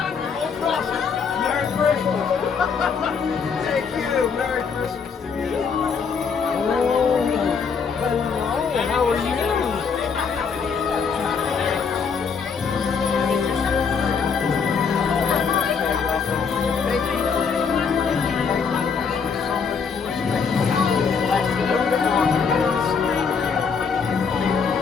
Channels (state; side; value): quieter; right; 5.8 dB